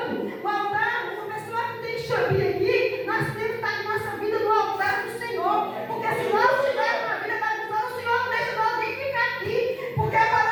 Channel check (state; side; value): identical; both; correlation 1.00